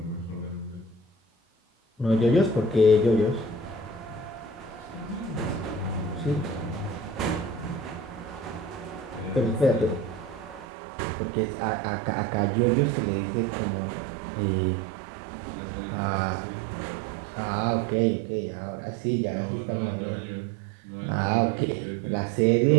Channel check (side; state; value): left; drops out; at 10.7 s